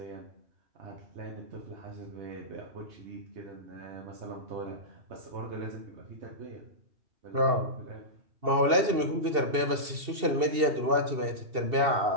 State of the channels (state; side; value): late; left; 2.7 ms